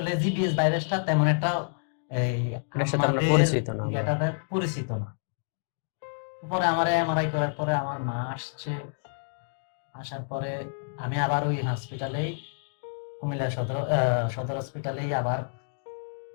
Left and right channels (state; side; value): silent; right; digital silence